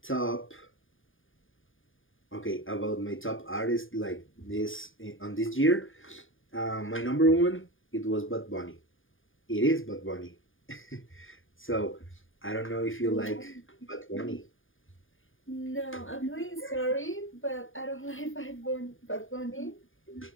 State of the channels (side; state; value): right; late; 0.58 ms